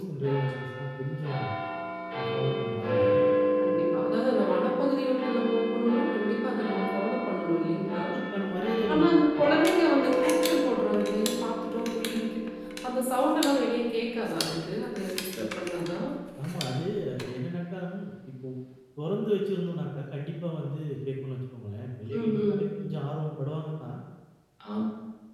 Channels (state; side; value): identical; both; correlation 1.00